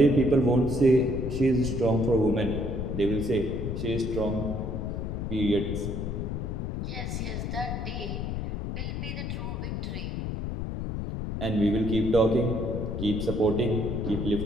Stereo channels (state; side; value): noise; left; rumble, 3 dB below the sound